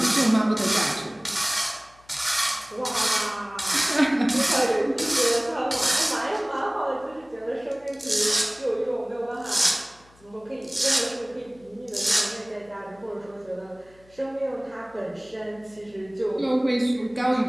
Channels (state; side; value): noise; left; hum, 28 dB below the sound